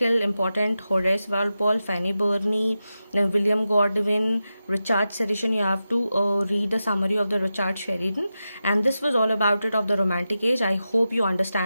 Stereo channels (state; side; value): inverted; both; correlation -0.90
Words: important, Horace Walpole, Fanny Burney, then William Godwin, Richard Sheridan, you have to read the summary of the Richard Sheridan. And this was all about it of the romantic age. I hope you